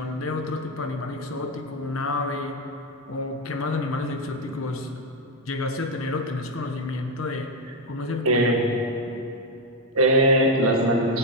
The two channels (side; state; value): both; normal; correlation 0.07